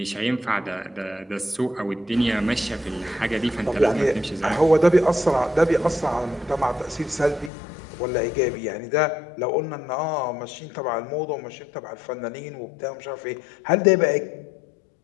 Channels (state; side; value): drops out; right; at 7.5 s